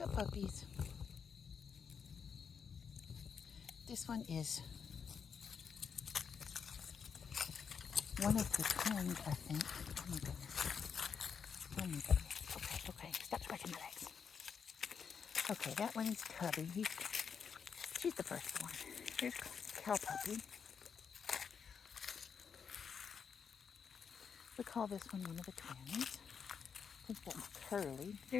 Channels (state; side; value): quieter; right; 6.6 dB